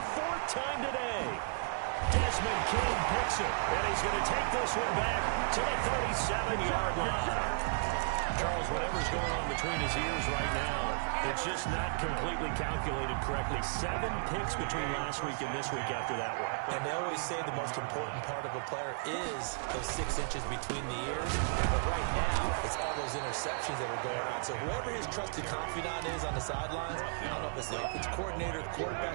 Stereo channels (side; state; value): left; silent; digital silence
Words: 4th time today. Desmond King picks it, and he's going to take this one back to the 37-yard line. Charles, whatever's going on between his ears right now, it's just not completely calculated correctly. 7 picks between last week and this week after that one. And they always say the most important part of a player is those 6 inches between the ears. But right now, it's all those interceptions that are going on. So whoever his trusted confidant is on the sidelines, I don't know if it's the offensive coordinator, the